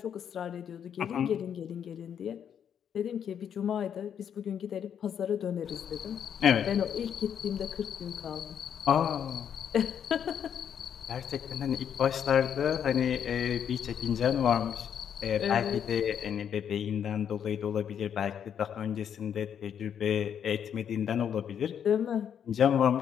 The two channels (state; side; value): quieter; right; 8.5 dB